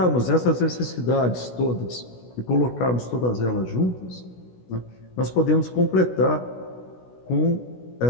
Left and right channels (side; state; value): right; late; 16 ms